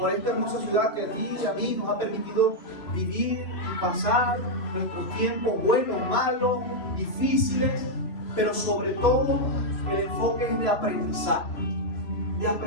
esta hermosa ciudad que a ti y a mí nos ha permitido vivir y pasar nuestros tiempos buenos, malos, difíciles, pero sobre todo el enfoque es de aprendizaje,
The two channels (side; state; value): right; late; 3.0 ms